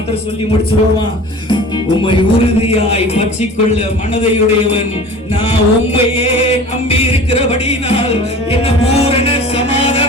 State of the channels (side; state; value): both; normal; correlation 0.40